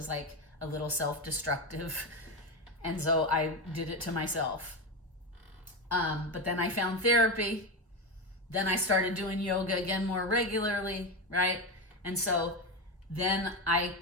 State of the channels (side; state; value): both; normal; correlation 0.15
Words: like a little self-destructive. And so I did it to myself. But then I found therapy. Then I started doing yoga again more regularly, right? And so then I